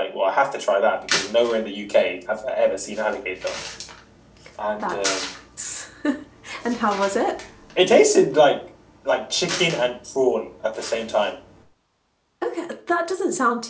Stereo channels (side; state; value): both; identical; correlation 1.00